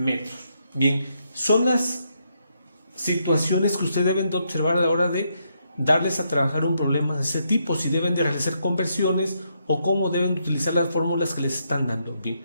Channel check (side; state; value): both; inverted; correlation -0.78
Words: Bien, son las situaciones que ustedes deben de observar a la hora de darles a trabajar un problema de ese tipo, si deben de realizar conversiones o cómo deben utilizar las fórmulas que les están dando. Bien,